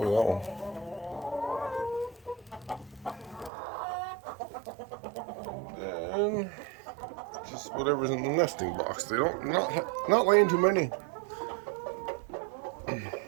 Look at that one. Then just whatever's in the nesting box. They don't not laying too many.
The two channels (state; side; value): drops out; left; at 3.5 s